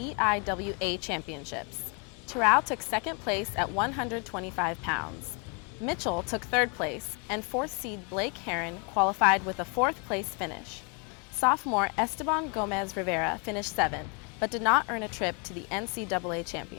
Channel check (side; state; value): right; quieter; 35.0 dB